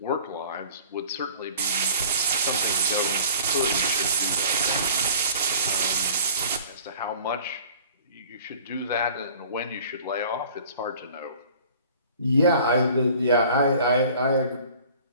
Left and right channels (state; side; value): inverted; both; correlation -0.48